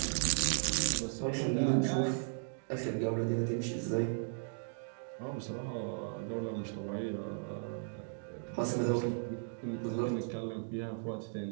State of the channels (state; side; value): silent; left; digital silence